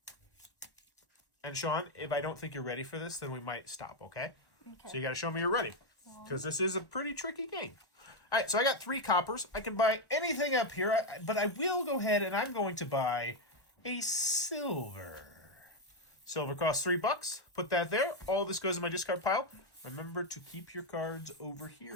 And Sean, if I don't think you're ready for this, then we might stop, okay? Okay. So you got to show me you're ready. Because this is a pretty tricky game. All right, so I got 3 coppers. I can buy anything up here, but I will go ahead and I'm going to buy a silver. Silver costs $3. Put that there. All this goes in my discard pile. Remember to keep your cards over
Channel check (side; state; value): right; late; 1.1 ms